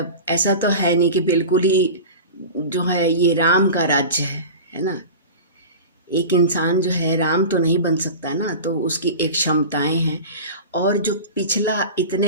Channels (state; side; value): inverted; both; correlation -0.32